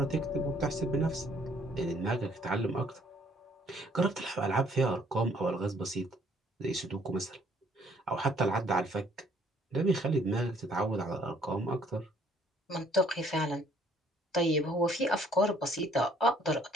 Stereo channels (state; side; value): normal; both; correlation 0.62